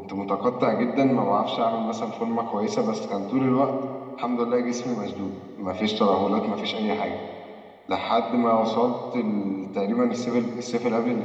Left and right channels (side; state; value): both; identical; correlation 1.00